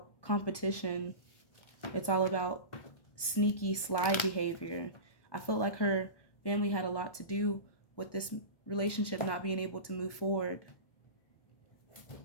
competition. It's all about sneaky, sly behavior. I felt like her family had a lot to do with this relationship not being able to move forward.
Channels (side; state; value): right; late; 1.2 ms